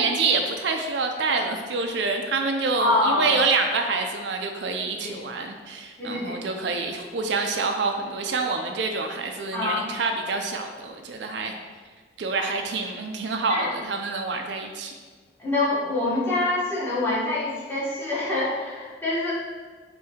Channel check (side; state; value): both; normal; correlation 0.02